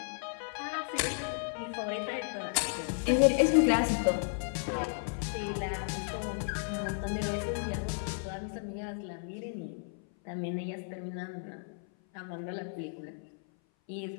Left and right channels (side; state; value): right; silent; 55 dB below the other